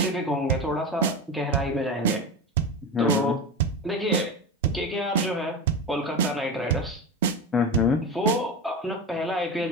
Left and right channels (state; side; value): normal; both; correlation 0.23